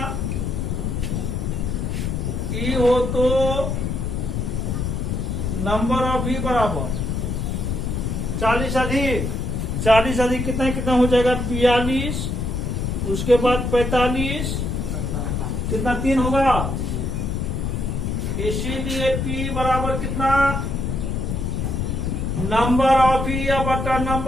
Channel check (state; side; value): noise; left; rumble, 1 dB below the sound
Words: ई हो तो नंबर ऑफ ई बराबर 40 अधिक, 40 अधिक कितना कितना हो जाएगा 42, उसके बाद 45, कितना 3 होगा। इसीलिए P बराबर कितना नंबर ऑफ ई या बटा